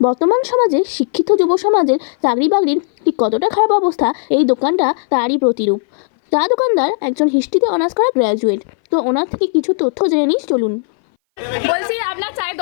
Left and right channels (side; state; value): right; silent; 60 dB below the other